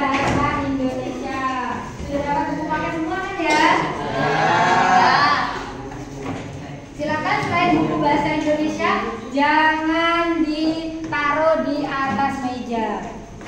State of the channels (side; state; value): both; identical; correlation 1.00